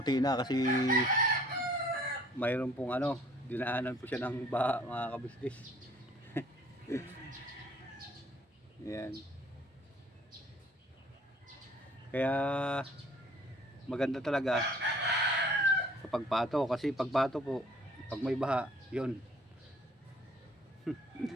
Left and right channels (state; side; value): normal; both; correlation 0.56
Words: na kasi mayroon pong dinaanan po siya ng baha mga kabisnes. Yan. Kaya maganda talaga kapag pato, kasi pag pato po, pag may baha, yun,